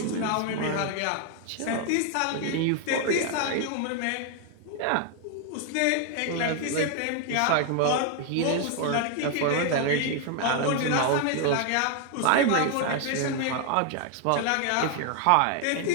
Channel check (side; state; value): both; different; correlation 0.01